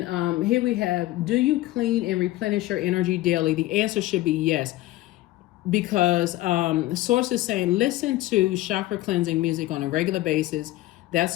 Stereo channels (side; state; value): right; quieter; 17.0 dB